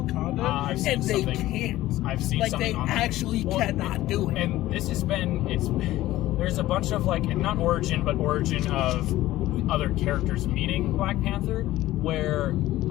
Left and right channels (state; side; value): quieter; right; 15.8 dB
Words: and they can't. I've seen something they actually cannot do it. And this has been there's a bunch of not origin of other characters meeting Black Panther, where